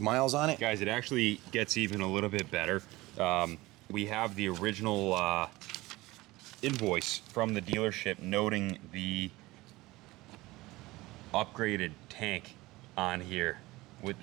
on it. Guys, it actually gets even a little bit better. We have the original invoice from the dealership noting the upgraded tank on here.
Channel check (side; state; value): left; quieter; 19.8 dB